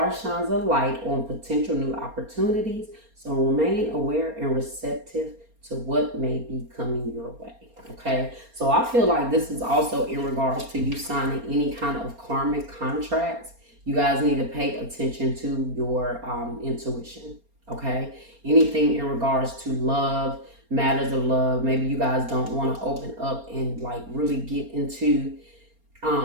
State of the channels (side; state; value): left; late; 4.3 ms